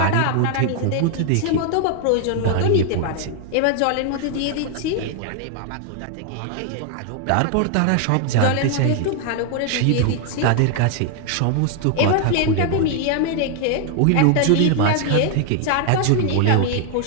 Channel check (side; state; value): both; different; correlation 0.00